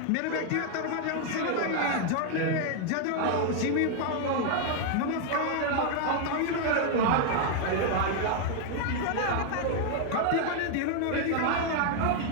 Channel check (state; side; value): different; both; correlation 0.00